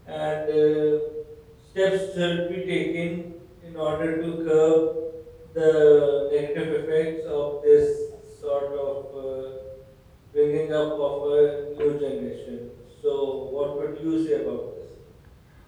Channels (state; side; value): identical; both; correlation 1.00